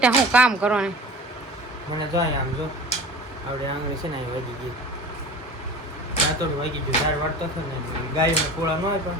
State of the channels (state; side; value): normal; both; correlation 0.38